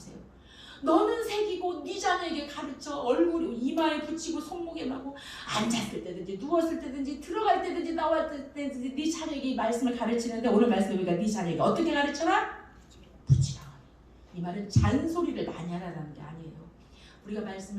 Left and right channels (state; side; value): identical; both; correlation 1.00